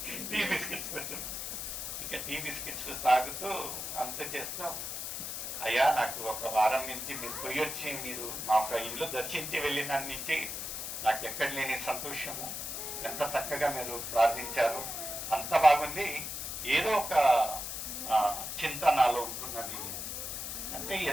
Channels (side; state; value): left; noise; hiss, 5 dB below the sound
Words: టీ బిస్కెట్స్ వచ్చింది. ఇక టీ బిస్కెట్స్ తాగుతూ అంత చేస్తూ, అయ్యా నాకు ఒక వారం నుంచి మీరు పోయి వచ్చి మీరు మా యొక్క ఇల్లు దర్శించి వెళ్ళిన నుంచి నాకు ఎక్కడ లేని సంతోషము, ఎంత చక్కగా మీరు ప్రార్థించారు, అంత బాగుంది. ఏదో ఒక చింత నాలో ఉంటున్నది అంటే,